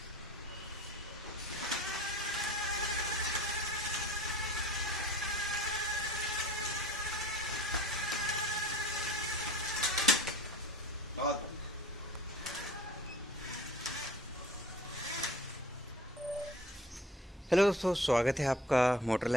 बहुत हेलो दोस्तों, स्वागत है आपका मोटर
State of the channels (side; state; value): both; normal; correlation 0.44